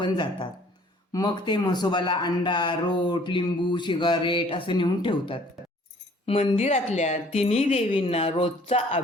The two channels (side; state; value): both; normal; correlation 0.56